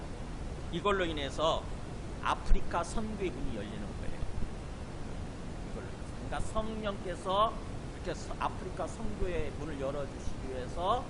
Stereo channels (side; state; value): both; identical; correlation 1.00